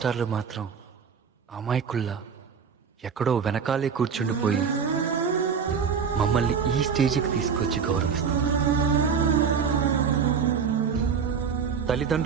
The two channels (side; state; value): left; quieter; 6.5 dB